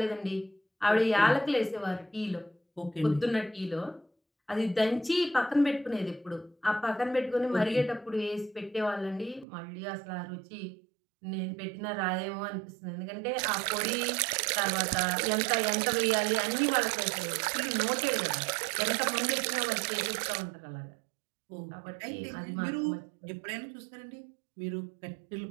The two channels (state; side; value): drops out; left; at 9.5 s